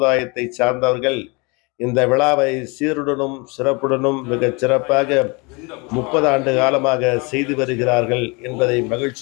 சார்ந்தவர்கள் இந்த விழாவை சீருடனும் சிறப்புடனும் மிகச் சிறப்பாக 30 ஆண்டு காலமாக செய்து வருகிறார்கள் என்பதை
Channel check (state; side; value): quieter; right; 28.9 dB